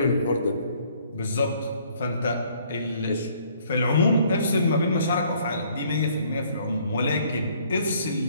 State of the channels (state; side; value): inverted; both; correlation -0.62